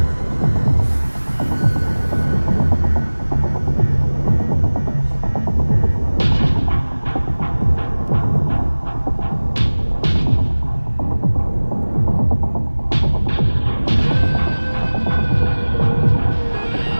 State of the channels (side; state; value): both; inverted; correlation -1.00